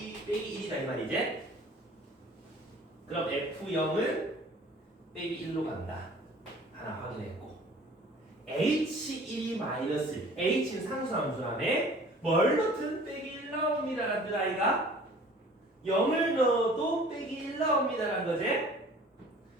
빼기 1이다 이 말이지? 그럼 F0은 빼기 1로 간다. 하나 확인했고 H1이 마이너스 1 H는 상수함수라며 뭘 넣든 빼기 1 나옵니다. 그 아이가 0을 넣어도 빼기 1 나옵니다라는 거지.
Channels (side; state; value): both; normal; correlation 0.49